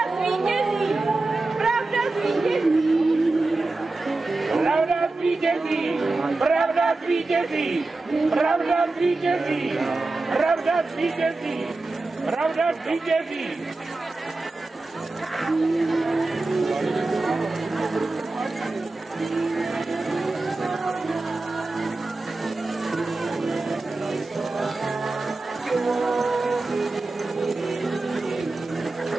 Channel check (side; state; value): left; quieter; 3.2 dB